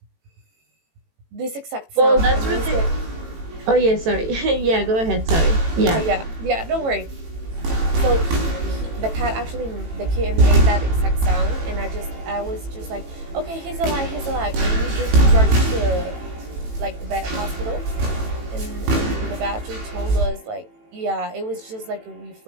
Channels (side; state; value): left; late; 18 ms